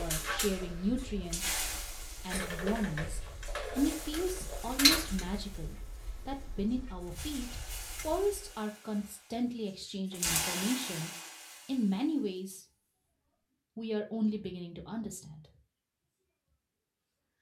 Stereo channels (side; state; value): both; identical; correlation 1.00